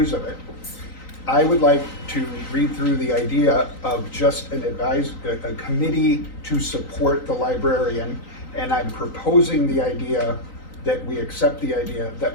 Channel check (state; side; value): late; right; 3.9 ms